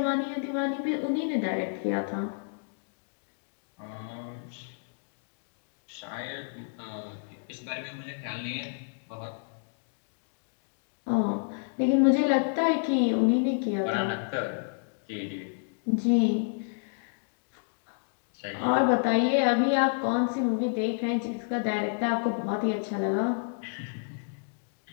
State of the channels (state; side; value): silent; right; digital silence